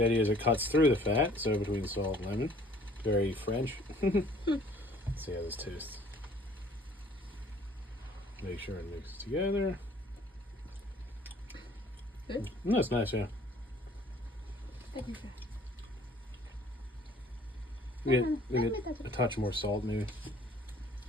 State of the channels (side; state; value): both; normal; correlation 0.55